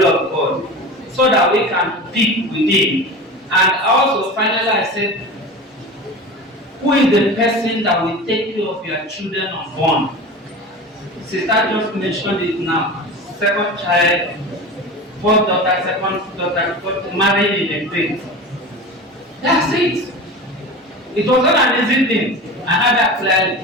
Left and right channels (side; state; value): both; normal; correlation 0.31